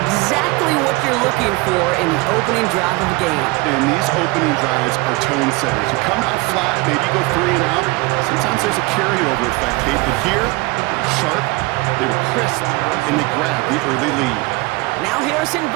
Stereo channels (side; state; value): left; quieter; 23.5 dB